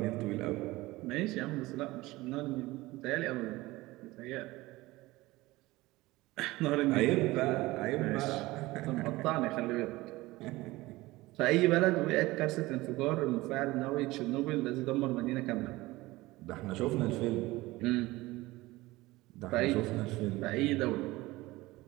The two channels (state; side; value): quieter; left; 19.6 dB